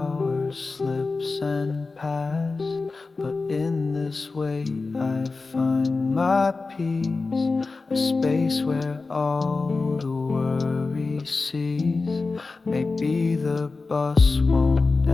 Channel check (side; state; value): right; quieter; 3.9 dB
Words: slips and pass. But in this way I find my peace, a space where all the worry cease. Maybe the bus won't